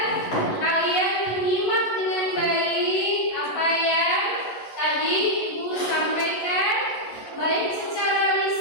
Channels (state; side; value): late; right; 11 ms